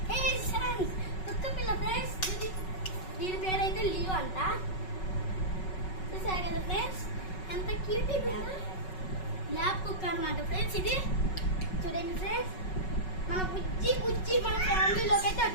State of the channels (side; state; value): right; late; 5.4 ms